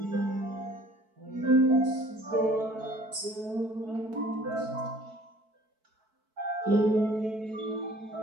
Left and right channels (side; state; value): left; late; 4.6 ms